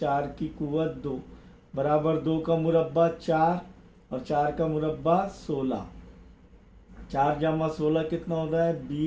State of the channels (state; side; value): identical; both; correlation 1.00